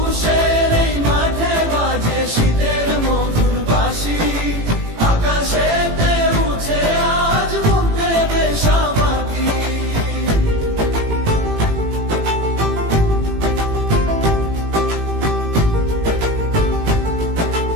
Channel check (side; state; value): left; late; 18 ms